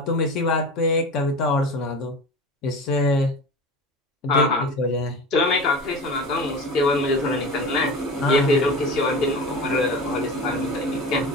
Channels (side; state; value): both; normal; correlation 0.32